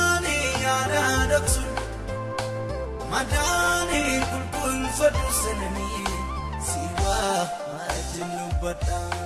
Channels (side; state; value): both; identical; correlation 1.00